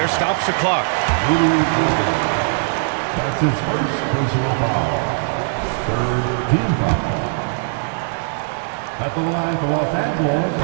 stops the clock. That's his first personal foul. 3rd team foul. At the line for Los Angeles.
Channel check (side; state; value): left; silent; 61 dB below the other